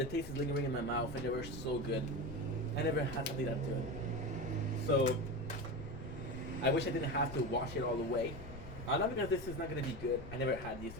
taste is lingering in my mouth and they were so good. I never had something that good. So I wish I didn't have to wash it all the way. Not because this is not gonna be good. I never had these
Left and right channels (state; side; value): noise; left; rumble, 13 dB below the sound